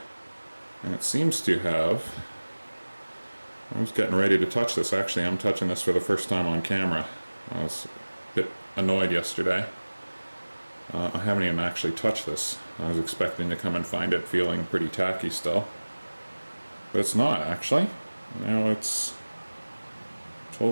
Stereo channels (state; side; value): inverted; both; correlation -1.00